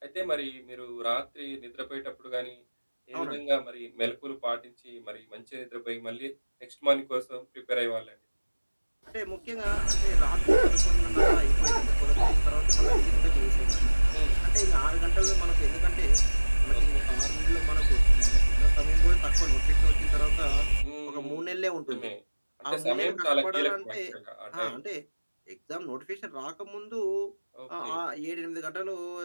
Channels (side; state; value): both; inverted; correlation -1.00